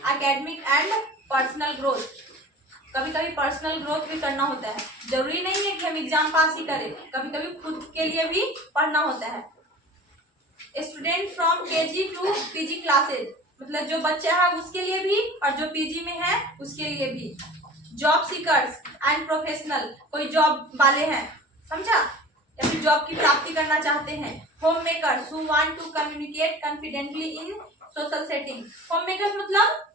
and personal growth. कभी कभी पर्सनल ग्रोथ भी करना होता है, जरूरी नहीं है कि हम एग्जाम पास ही करें, कभी कभी खुद के लिए भी पढ़ना होता है। Student from KG to PG classes, मतलब जो बच्चा है उसके लिए भी और जो पीजी में है उसके लिए भी। जॉब सीकर्स एंड प्रोफेशनल, कोई जॉब वाले हैं, समझा, या फिर जॉब की प्राप्ति करना चाहते हैं। Home makers who want to communicate confidently in social setting. Home makers मतलब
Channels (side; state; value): both; normal; correlation 0.40